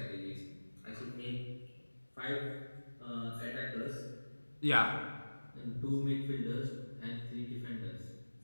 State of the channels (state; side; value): inverted; both; correlation -1.00